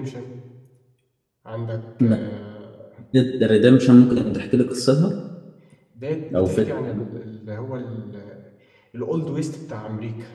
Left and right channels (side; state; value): both; identical; correlation 1.00